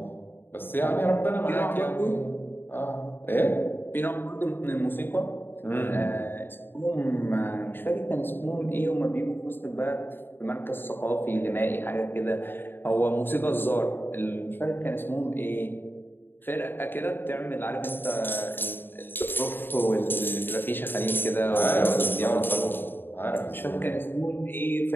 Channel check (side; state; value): right; late; 0.098 ms